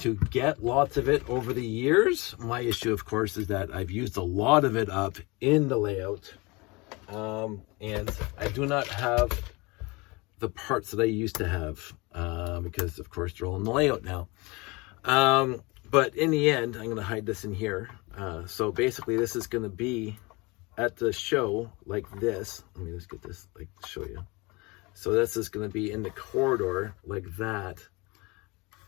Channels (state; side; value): quieter; right; 25.4 dB